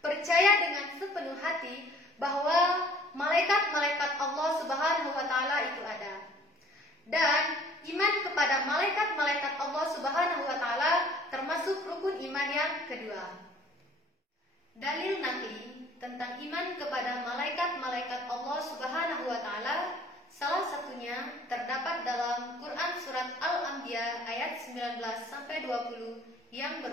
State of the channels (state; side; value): normal; both; correlation 0.53